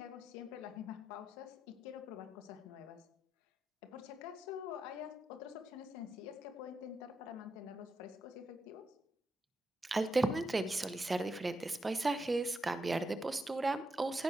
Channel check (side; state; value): both; normal; correlation 0.84